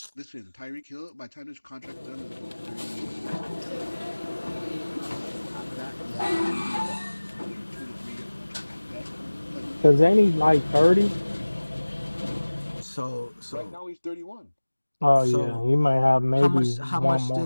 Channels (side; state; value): both; inverted; correlation -1.00